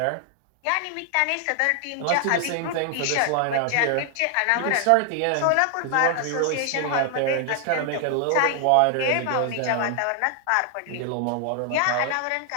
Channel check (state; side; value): different; both; correlation 0.00